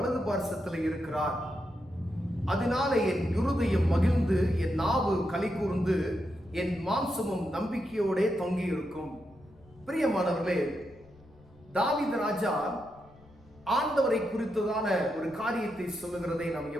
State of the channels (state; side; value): noise; left; rumble, 26 dB below the sound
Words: பார்சத்தில் இருக்கிறார். அதனால என் இருதயம் மகிழ்ந்து, என் நாவு களி கூர்ந்து, என் மாம்சமும் நம்பிக்கையோட தொங்கி இருக்கும். பிரியமானவர்களே, தாவீது ராஜா ஆண்டவரை குறித்ததான ஒரு காரியத்தை சொல்லுகிறதை நாம்